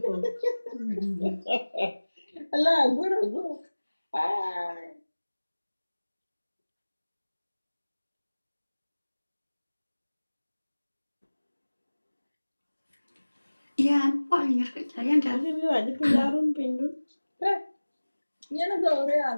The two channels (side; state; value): both; inverted; correlation -1.00